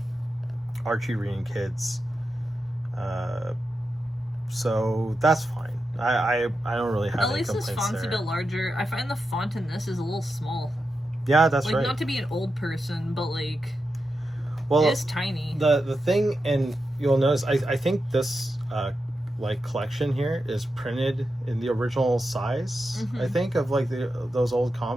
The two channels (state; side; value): normal; both; correlation 0.88